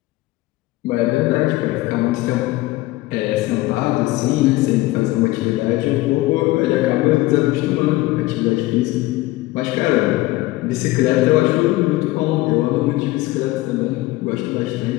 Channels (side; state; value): right; quieter; 18.6 dB